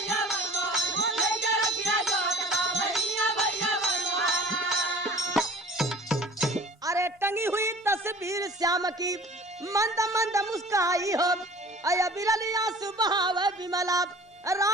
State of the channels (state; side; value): normal; both; correlation 0.46